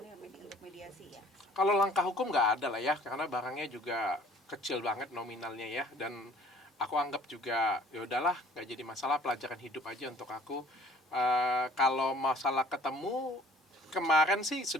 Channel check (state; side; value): normal; both; correlation 0.53